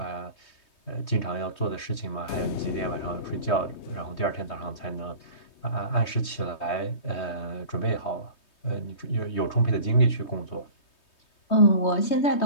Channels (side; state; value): right; late; 3.2 ms